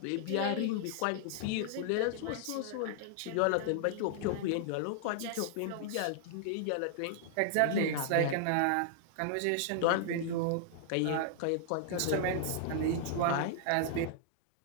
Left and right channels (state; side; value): different; both; correlation -0.01